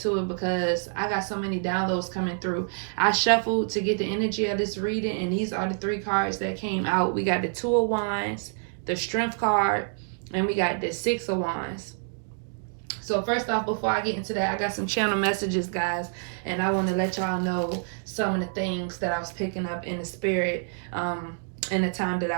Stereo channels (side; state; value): left; silent; 60 dB below the other